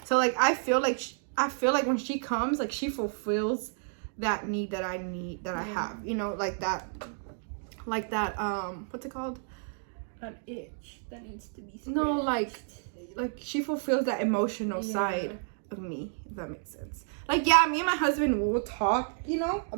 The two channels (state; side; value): silent; left; 57 dB below the other